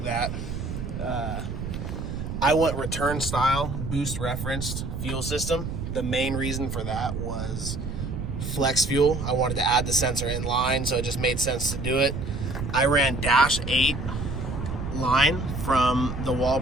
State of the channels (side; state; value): right; noise; rumble, 5 dB below the sound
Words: that. I went return style, boost referenced fuel system. The main reason for that was flex fuel. I wanted to add the sensor in line, so it just made sense to do it. I ran dash 8 line from the